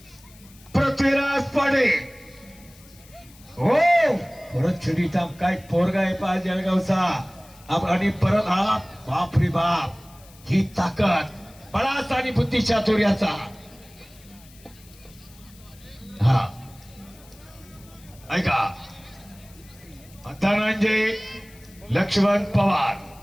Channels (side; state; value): left; noise; hiss, 24 dB below the sound